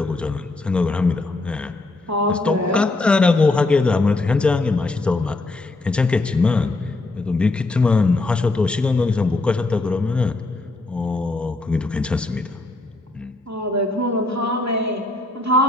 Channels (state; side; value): quieter; right; 3.1 dB